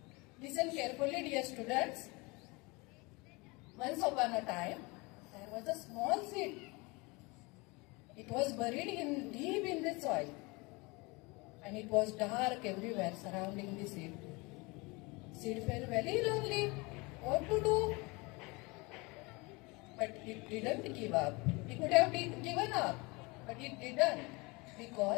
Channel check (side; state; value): right; quieter; 26.1 dB